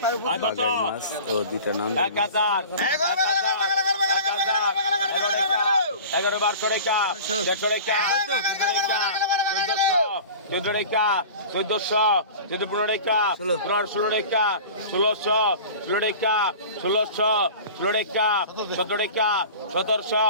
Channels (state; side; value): inverted; both; correlation -0.38